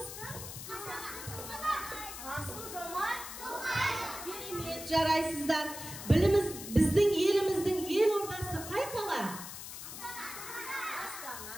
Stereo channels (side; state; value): left; noise; hiss, 10 dB below the sound